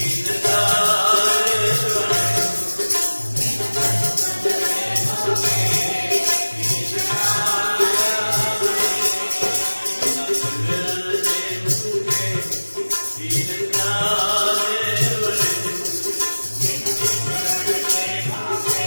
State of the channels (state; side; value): inverted; both; correlation -1.00